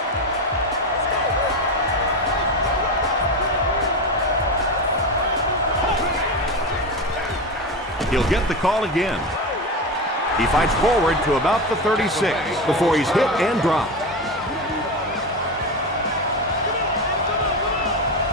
He'll get the call again. He fights forward to about the 36 before he's hit and dropped.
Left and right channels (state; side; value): normal; both; correlation 0.20